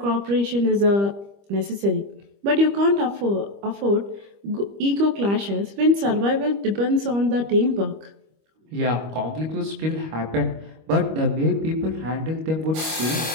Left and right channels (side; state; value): left; late; 25 ms